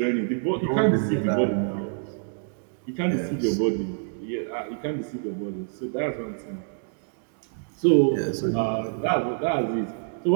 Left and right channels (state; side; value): silent; left; digital silence